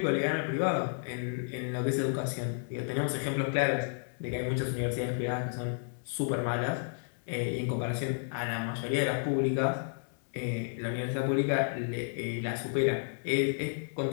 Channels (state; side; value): silent; right; digital silence